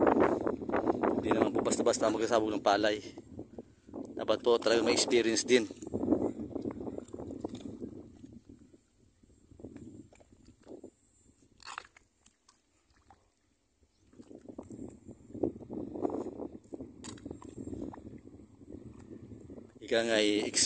Hindi naman po basta-basta magsasabog ng palay. Dapat po talaga may experience din. Ika nga ay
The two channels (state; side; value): identical; both; correlation 1.00